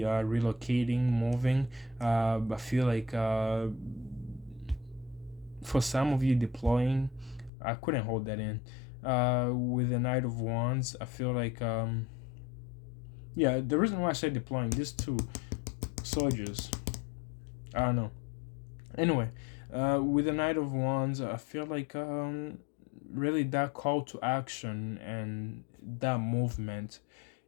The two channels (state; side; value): drops out; right; at 7.5 s